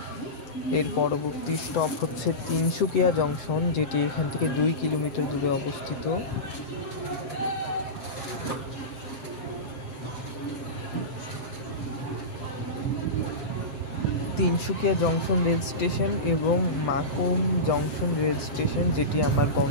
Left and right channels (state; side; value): late; right; 7.8 ms